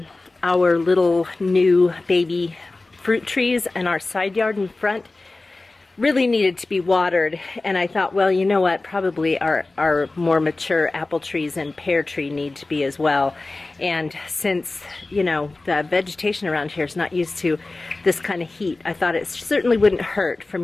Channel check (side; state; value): right; quieter; 3.2 dB